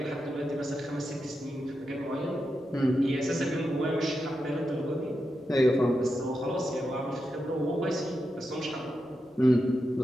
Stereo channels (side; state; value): both; normal; correlation 0.87